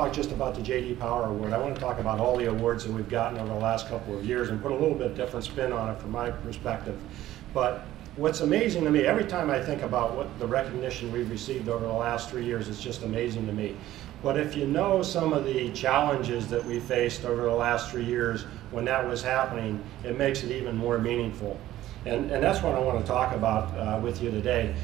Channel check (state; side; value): quieter; left; 14.2 dB